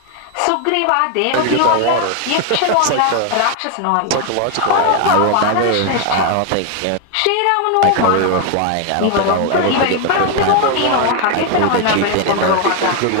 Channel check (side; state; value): both; different; correlation 0.01